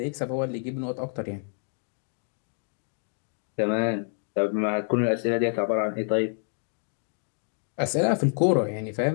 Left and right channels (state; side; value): silent; right; 57 dB below the other